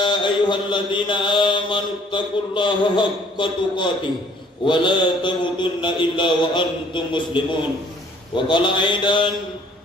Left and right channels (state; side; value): normal; both; correlation 0.57